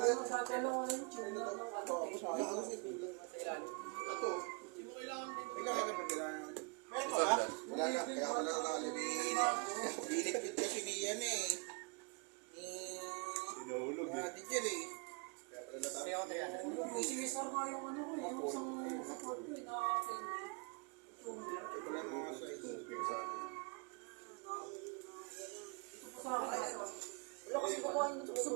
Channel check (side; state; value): left; quieter; 34.2 dB